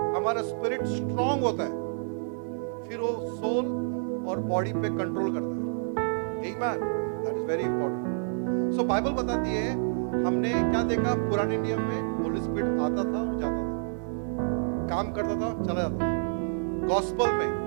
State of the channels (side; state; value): left; silent; digital silence